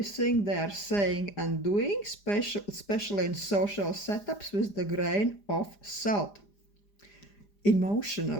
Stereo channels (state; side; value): late; right; 4.9 ms